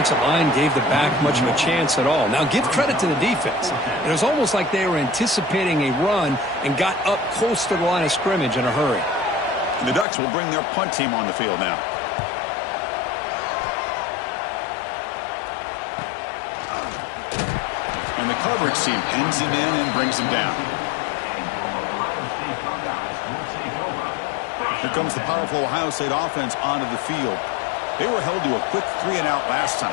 line gave the back much of a chance at all. Now, give credit to the defense. It was almost like they were anticipating a run and got up close to the line of scrimmage in a hurry. The Ducks will bring their punt team on the field now. And the coverage team pins him in and brings him down. Here comes the powerful Ohio State offense onto the field. They were held to a quick 3-and-out last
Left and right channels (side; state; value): right; drops out; at 10.1 s